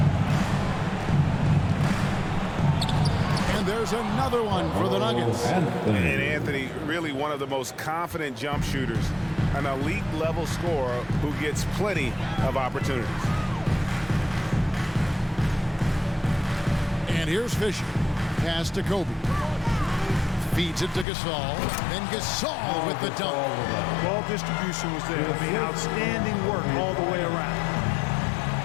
And there's another one for the Nuggets. And Anthony, really one of the most confident jump shooters, an elite level scorer who gets plenty of opportunities. And here's Fisher. Pass to Kobe. Feeds it to Gasol. Then Gasol with the dunk. Ball distribution was there. I mean, outstanding work all the way around.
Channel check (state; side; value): drops out; right; at 21.1 s